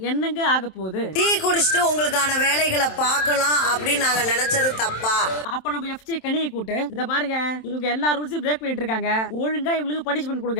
என்னங்க ஆக போகுது? டீ குடிச்சிட்டு உங்களுக்கான வேலைகளை பார்க்கலாம் அப்படின்னு நாங்க நினைச்சது தப்பா? அப்ப நம்ம எஃப்ஜே கனியை கூட்டு, இத பாருங்க இவங்க எல்லா ரூல்ஸையும் பிரேக் பண்ணிட்டு இருக்காங்க, ஒழுங்கா இவங்களுக்கு பனிஷ்மென்ட்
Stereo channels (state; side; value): late; right; 27 ms